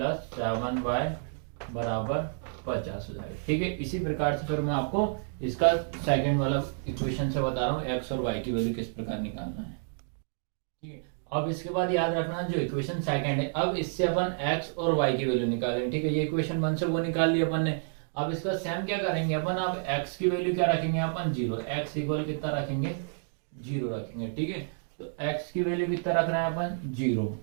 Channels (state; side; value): silent; left; digital silence